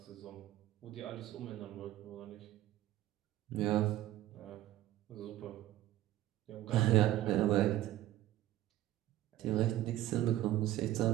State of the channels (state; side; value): quieter; left; 14.2 dB